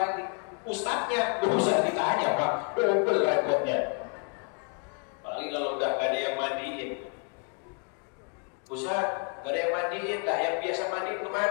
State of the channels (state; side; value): quieter; right; 38.5 dB